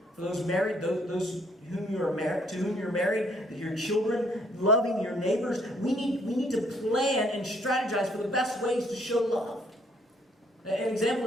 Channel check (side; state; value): both; normal; correlation 0.65